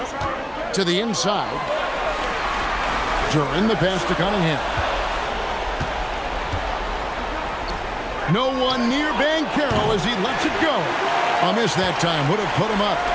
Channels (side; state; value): both; identical; correlation 1.00